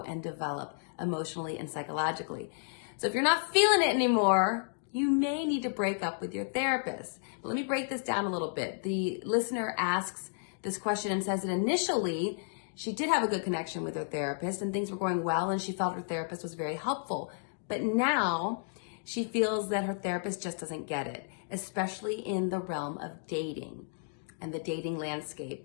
and develop emotionally and psychologically. So if you're not feeling it anymore, you may need to break up with your therapist. Let me break this down a little bit. The listener asks this question and says that initially she did have a good connection with her therapist and things were going well and she felt her therapist was very helpful. But now she feels that her therapist just doesn't get it, especially in the realm of dating and the dating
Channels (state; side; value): silent; right; digital silence